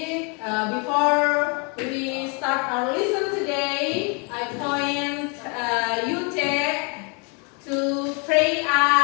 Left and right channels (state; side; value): quieter; right; 34.0 dB